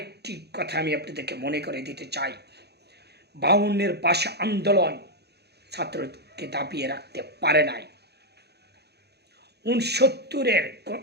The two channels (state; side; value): late; left; 0.48 ms